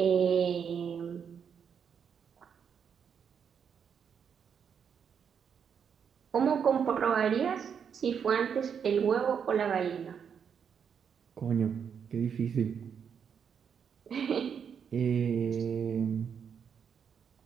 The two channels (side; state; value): left; quieter; 7.3 dB